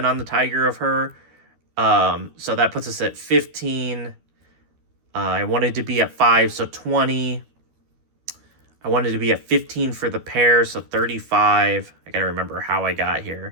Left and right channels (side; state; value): left; late; 12 ms